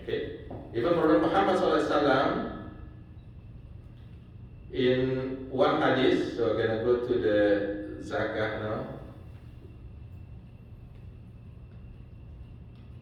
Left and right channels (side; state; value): both; identical; correlation 1.00